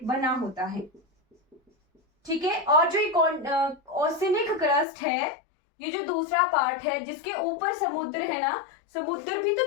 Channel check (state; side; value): drops out; right; at 4.9 s